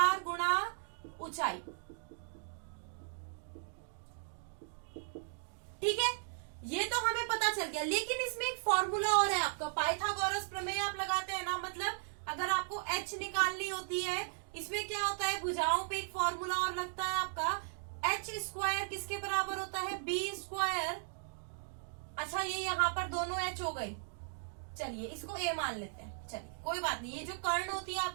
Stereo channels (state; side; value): silent; left; digital silence